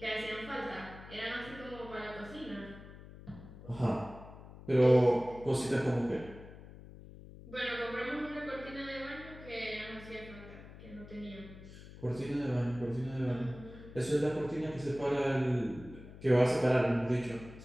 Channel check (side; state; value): left; noise; hum, 16 dB below the sound